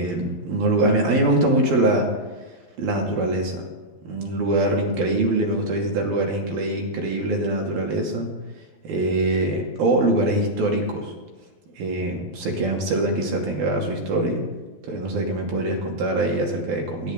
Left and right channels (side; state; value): left; late; 12 ms